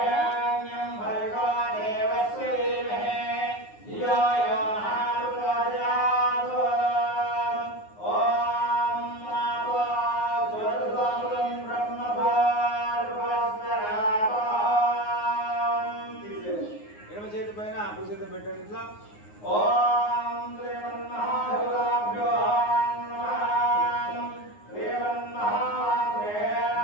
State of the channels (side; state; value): right; late; 9.6 ms